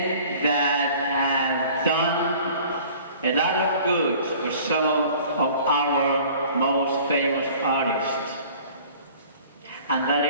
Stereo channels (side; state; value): both; inverted; correlation -0.48